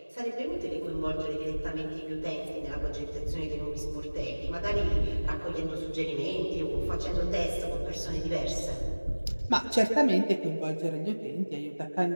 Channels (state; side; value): inverted; both; correlation -1.00